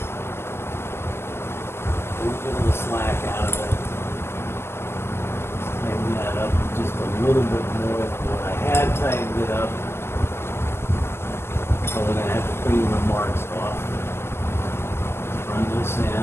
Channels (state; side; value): late; right; 0.12 ms